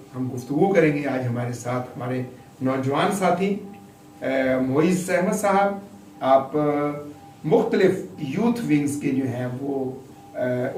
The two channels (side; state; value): both; identical; correlation 1.00